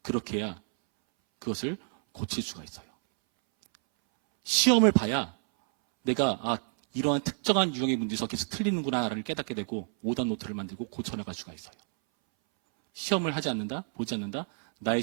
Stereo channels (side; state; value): left; silent; 59 dB below the other